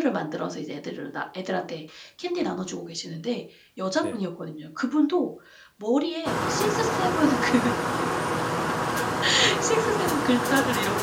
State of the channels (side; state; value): both; identical; correlation 1.00